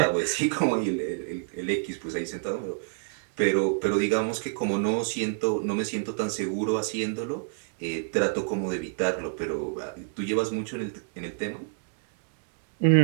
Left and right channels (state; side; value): silent; left; digital silence